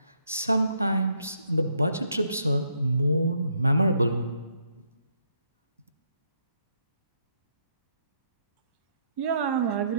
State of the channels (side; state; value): both; inverted; correlation -0.73